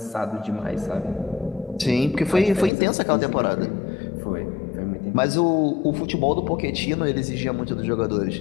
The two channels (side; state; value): right; drops out; at 2.7 s